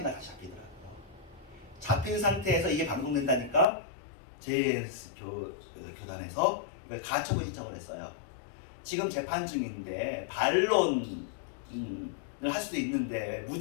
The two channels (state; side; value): drops out; right; at 3.7 s